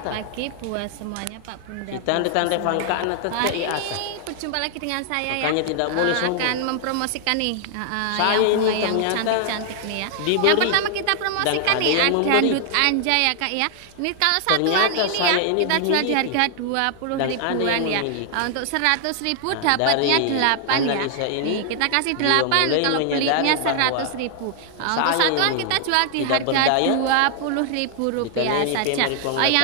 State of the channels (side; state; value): both; different; correlation 0.00